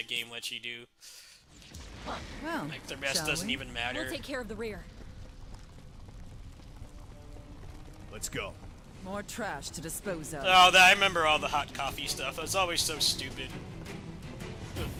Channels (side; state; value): both; identical; correlation 1.00